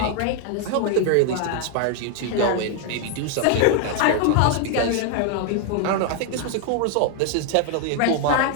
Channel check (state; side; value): different; both; correlation 0.00